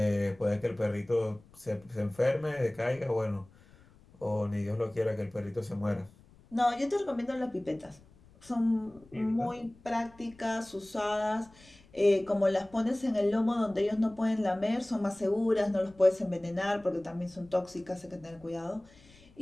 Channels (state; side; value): noise; left; rumble, 26 dB below the sound